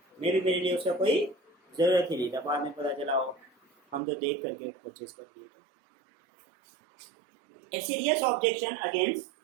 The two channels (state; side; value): drops out; left; at 4.0 s